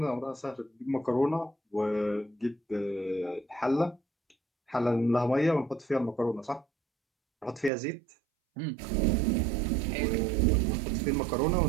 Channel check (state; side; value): drops out; left; at 7.7 s